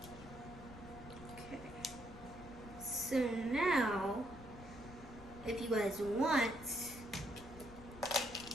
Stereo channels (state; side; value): noise; left; rumble, 16 dB below the sound